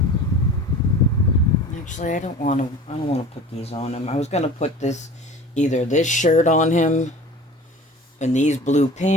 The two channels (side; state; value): both; normal; correlation 0.40